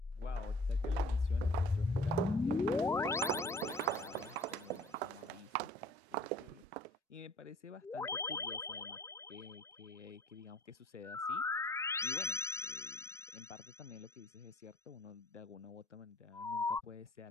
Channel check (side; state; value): both; normal; correlation 0.51